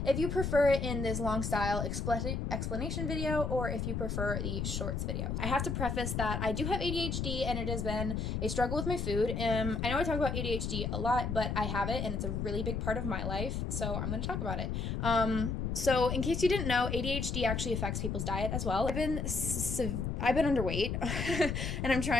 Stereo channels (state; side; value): noise; left; rumble, 2 dB below the sound